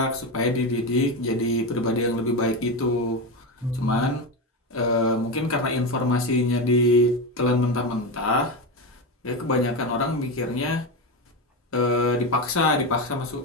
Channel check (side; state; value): both; normal; correlation 0.16